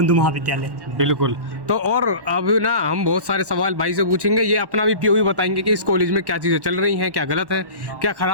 महाविद्यालय। बिल्कुल। तो और अब ना हम बहुत सारे सवाल भाई से पूछेंगे, ये अपना भी पीओवी बताएंगे कि इस कॉलेज में क्या चीज़ें चल रही हैं, क्या गलत है, क्या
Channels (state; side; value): late; left; 1.1 ms